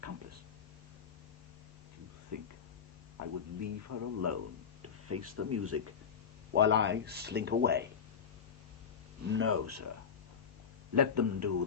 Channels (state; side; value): quieter; right; 6.9 dB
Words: accomplice. Do you think I would leave her alone to face the music while I slink away? No, sir. Let them do